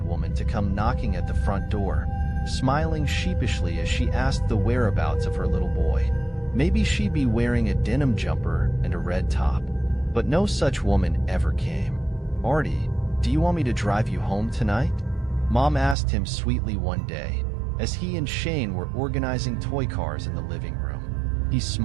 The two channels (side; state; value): left; drops out; at 16.0 s